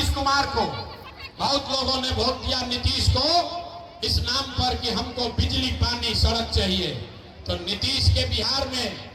कुमार को, बहुत लोगों ने वोट दिया नीतीश को इस नाम पर कि हमको बिजली पानी सड़क चाहिए। तो नीतीश के बिहार में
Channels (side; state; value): both; identical; correlation 1.00